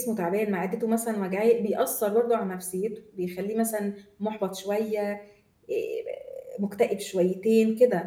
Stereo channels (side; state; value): both; identical; correlation 1.00